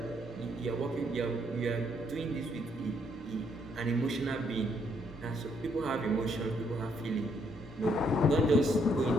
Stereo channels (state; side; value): normal; both; correlation 0.71